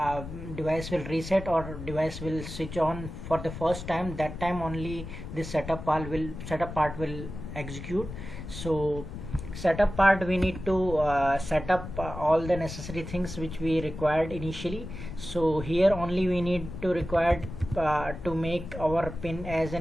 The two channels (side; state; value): left; noise; rumble, 9 dB below the sound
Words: device will reset or device will switch on for the first time, that time only this setup part will execute. So setup part, we need to set up all the necessary things which we required initially. So here only we need to require to make our pin as